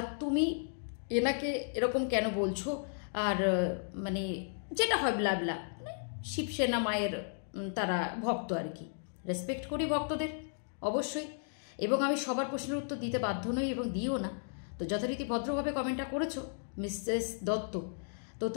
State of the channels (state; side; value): silent; right; digital silence